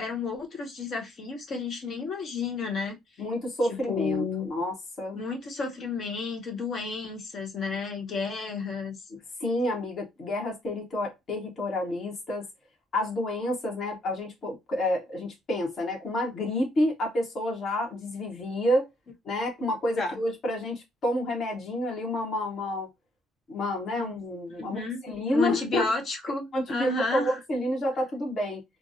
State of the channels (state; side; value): normal; both; correlation 0.70